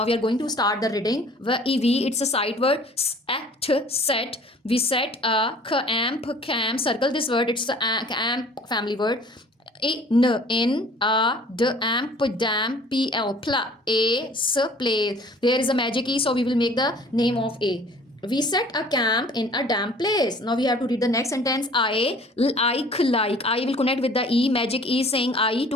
we are going to start the reading. It's a sight word. Set. We set a amp, cam. Circle this word. It's the amp family word. In a d amp dam pl a s place. There is a magic e, so we will make the name of a. We set a camp in a damp place. Now we have to read the next sentence. I like. I will connect with the e. Magic e saying I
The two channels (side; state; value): both; normal; correlation 0.51